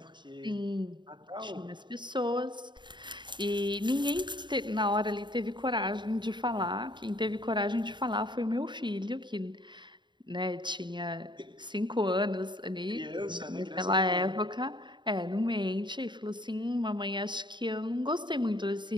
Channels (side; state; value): left; late; 0.22 ms